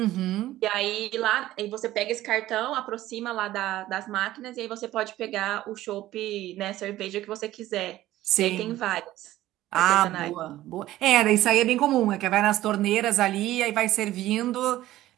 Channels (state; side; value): quieter; left; 15.1 dB